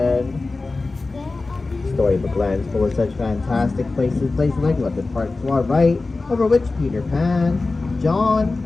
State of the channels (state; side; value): quieter; right; 3.5 dB